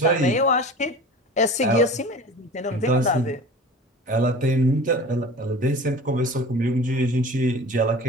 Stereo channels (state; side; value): normal; both; correlation 0.38